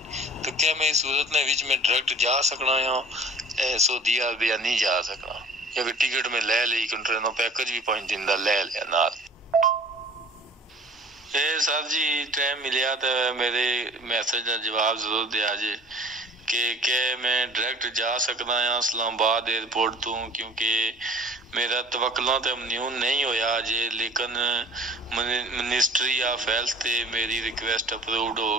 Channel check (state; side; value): normal; both; correlation 0.47